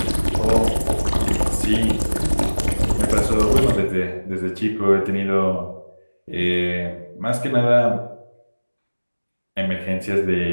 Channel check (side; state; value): both; inverted; correlation -1.00